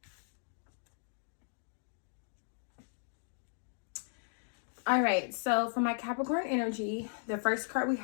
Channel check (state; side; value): silent; right; digital silence